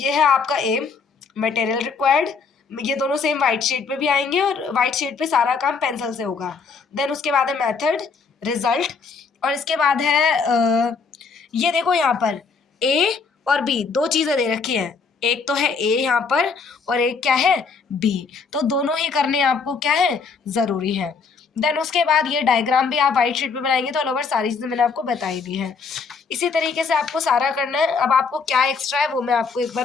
है आपका एम, मटेरियल रिक्वायर्ड, ये दोनों सेम वाइट शीट पे भी आएंगे और वाइट शीट पे सारा काम पेंसिल से होगा। देन उसके बाद है मेथड, रिजल्ट और इसके बाद है ये देखो यहाँ पर ए और बी, दो चीजें दे रखी हैं, एक तो है ए यहाँ पर और एक क्या है बी, तो दोनों ही करने आपको क्या है जरूरी है। देन उसके बाद ये डायग्राम भी आप व्हाइट शीट पे बनाएंगे तो ऑल ओवर सारी चीजें मैंने आपको बताई दी है। इसी तरीके से आपको सारा करना है। अब आपको क्या एक्स्ट्रा है वो मैं आपको एक बार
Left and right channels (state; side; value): quieter; right; 5.1 dB